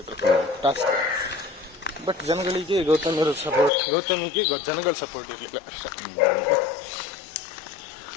ಇದ್ರು ಟಾಸ್ಕ್. ಬಟ್ ಜನಗಳಿಗೆ ಗೌತಮಿಗೆ ಜನಗಳ ಸಪೋರ್ಟ್ ಇರಲಿಲ್ಲ.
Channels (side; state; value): right; drops out; at 3.7 s